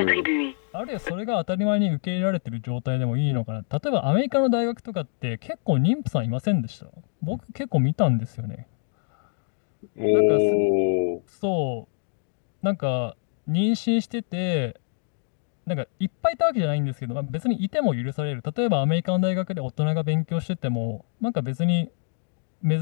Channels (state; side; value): silent; right; 61 dB below the other